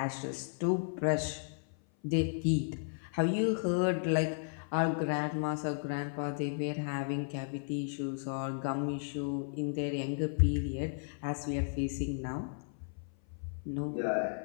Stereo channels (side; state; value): right; silent; 55 dB below the other